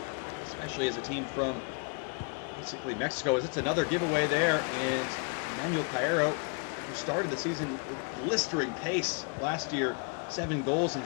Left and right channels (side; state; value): right; quieter; 36.9 dB